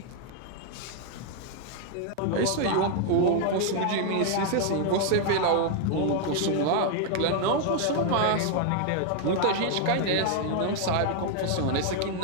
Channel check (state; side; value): different; both; correlation 0.00